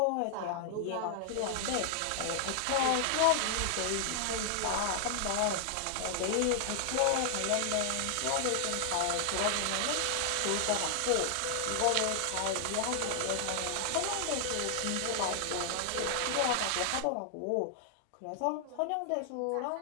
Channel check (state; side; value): different; both; correlation 0.00